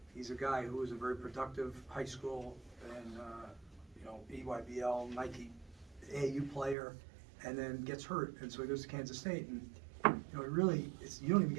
He's a guy who was a very productive high school and EYBL, Nike AAU player, and then gets hurt, and so he goes to Kansas State, and you don't even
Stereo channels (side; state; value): left; drops out; at 6.8 s